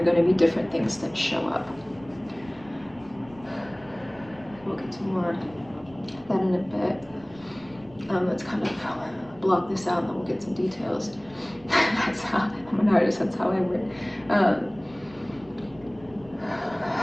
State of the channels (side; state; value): right; noise; rumble, 24 dB below the sound